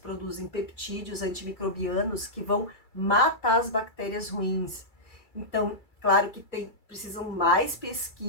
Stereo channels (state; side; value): late; right; 2.3 ms